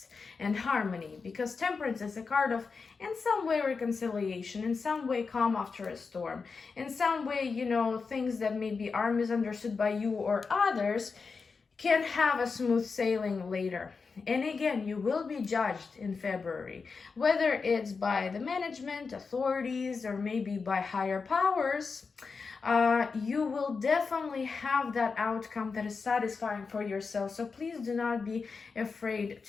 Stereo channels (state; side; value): quieter; right; 4.9 dB